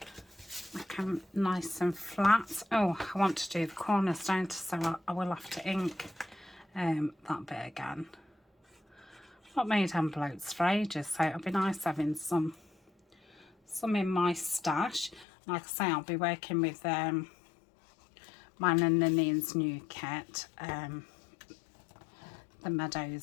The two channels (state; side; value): drops out; right; at 15.2 s